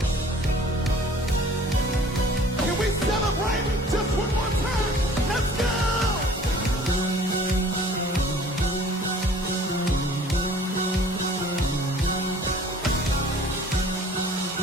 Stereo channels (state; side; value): normal; both; correlation 0.50